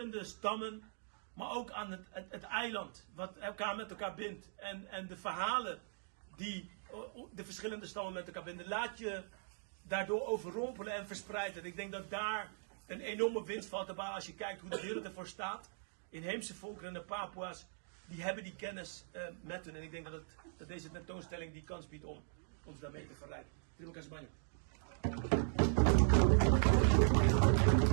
stammen, maar ook aan het eiland, wat elkaar met elkaar bindt. En de verhalen die de verschillende stammen met elkaar binden. Laat je daardoor overrompelen en verspreiden. Ik denk dat daar een enorme winst valt te behalen als je kijkt hoe de wereld ervoor staat. Inheemse volkeren en de Papua's, die hebben die kennis met hun. En ik denk dat deze tentoonstelling die kans biedt om ons daarmee te verrijken. Terima kasih banyak.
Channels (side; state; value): left; silent; digital silence